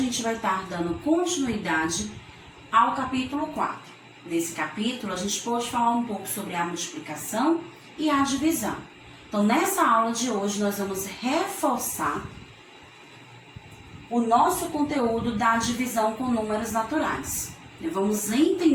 gente vai estar dando continuidade ao capítulo 4. Nesse capítulo a gente pode falar um pouco sobre a multiplicação e a divisão. Então nessa aula de hoje nós vamos reforçar o nosso conteúdo da divisão com números naturais. Vamos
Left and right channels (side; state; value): both; identical; correlation 1.00